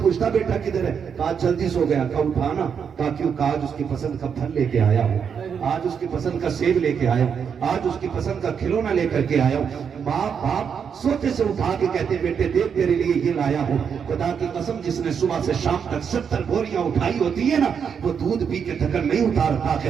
پوچھتا بیٹا کدھر ہے، کہا جلدی سو گیا، کہا اٹھانا، کہا کیوں، کہا آج اس کی پسند کا پھل لے کے آیا ہوں، آج اس کی پسند کا سیب لے کے آیا ہوں، آج اس کی پسند کا کھلونا لے کر کے آیا ہوں۔ باپ سوتے سے اٹھا کے کہتے بیٹے دیکھ تیرے لیے یہ لایا ہوں، خدا کی قسم جس نے صبح سے شام تک 70 بوریاں اٹھائی ہوتی ہے نا، وہ دودھ پی کے تھکن نہیں اتارتا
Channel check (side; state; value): left; quieter; 7.0 dB